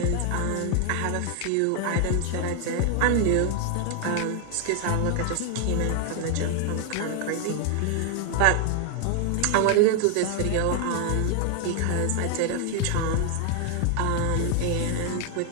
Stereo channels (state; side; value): different; both; correlation 0.00